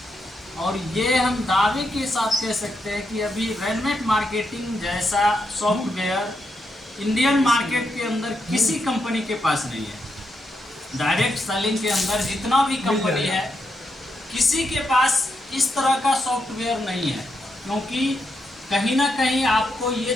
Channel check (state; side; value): normal; both; correlation 0.82